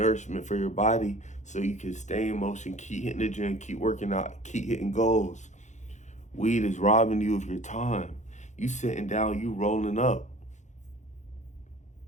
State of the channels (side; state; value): right; late; 0.35 ms